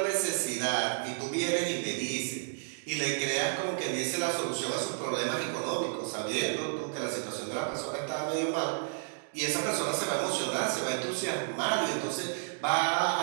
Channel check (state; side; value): silent; left; digital silence